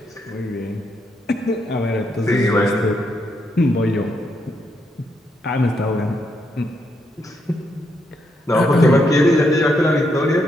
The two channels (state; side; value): normal; both; correlation 0.79